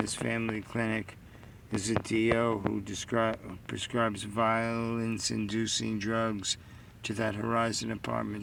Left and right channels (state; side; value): identical; both; correlation 1.00